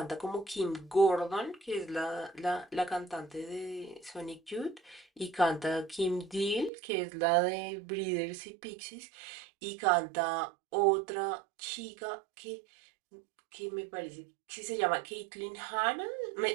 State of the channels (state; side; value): drops out; left; at 6.7 s